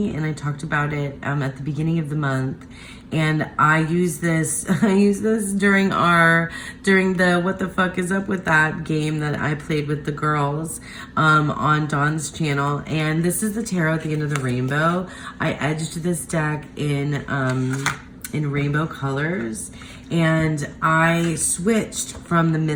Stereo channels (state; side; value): identical; both; correlation 1.00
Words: and I talked about it at the beginning of the month. And I use this during the What the Fuck Is Up With That game that I played with the girls on Dawn's channel. And this is the tarot at the end of the rainbow. I edged this deck in rainbow colors, and I switched from the